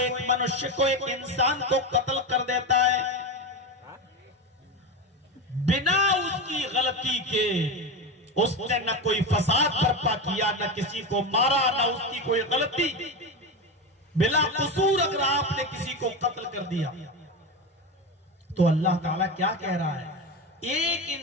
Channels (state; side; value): normal; both; correlation 0.19